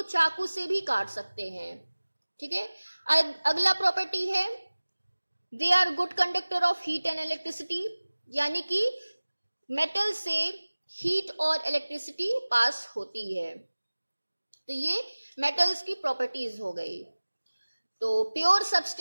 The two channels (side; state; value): both; inverted; correlation -1.00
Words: चाकू से भी काट सकते हैं, ठीक है। अगला प्रॉपर्टी है they are good conductor of heat and electricity, यानी कि मेटल से हीट और इलेक्ट्रिसिटी पास होती है। तो ये मेटल्स की प्रॉपर्टीज हो गई। तो प्योर